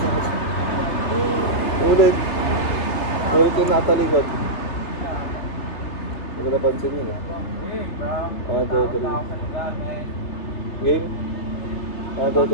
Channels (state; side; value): late; right; 3.3 ms